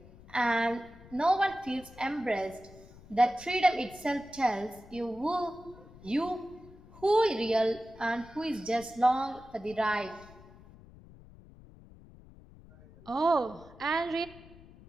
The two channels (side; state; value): left; noise; rumble, 21 dB below the sound